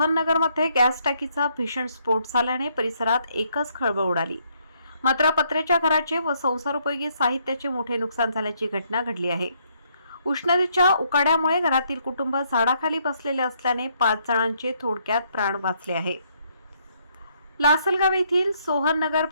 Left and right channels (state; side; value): inverted; both; correlation -0.71